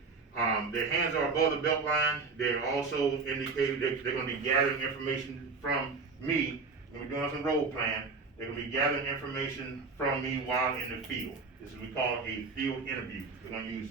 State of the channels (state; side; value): quieter; left; 4.4 dB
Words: Their hands are above the belt line. They're also indicated they're going to be gathering information from me. When we're doing some role plan, they're going to be gathering information from me while in the field. This is what we call a field interview. We're going to use